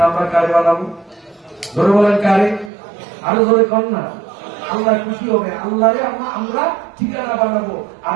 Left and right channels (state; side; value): drops out; left; at 2.7 s